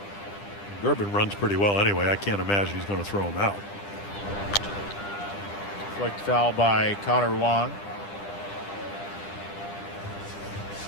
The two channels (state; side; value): late; right; 10 ms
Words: it. Durbin runs pretty well anyway. I can't imagine he's going to throw him out. Flicked foul by Connor Wong.